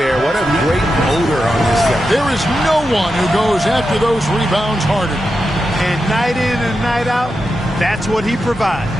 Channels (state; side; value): normal; both; correlation 0.89